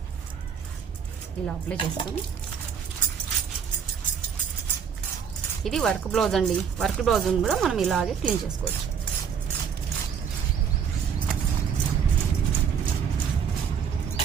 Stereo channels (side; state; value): left; quieter; 7.3 dB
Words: ఇలా అప్లై చేసుకొని, ఇది వర్క్ బ్లౌజ్ అండి. వర్క్ బ్లౌజ్ కూడా మనం ఇలాగే క్లీన్ చేసుకోవచ్చు.